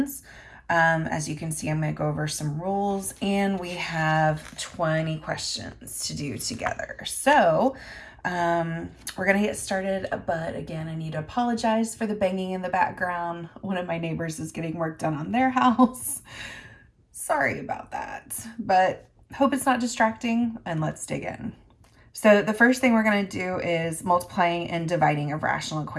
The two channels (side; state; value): both; identical; correlation 1.00